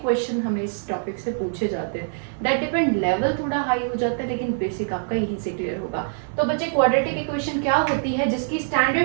क्वेश्चन हमें इस टॉपिक से पूछे जाते हैं। दैट डिपेंड, लेवल थोड़ा हाई हो जाता है, लेकिन बेसिक आपका यहीं से क्लियर होगा। तो बच्चे, क्वाड्रेटिक इक्वेशन क्या होती है, जिसकी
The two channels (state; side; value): silent; left; digital silence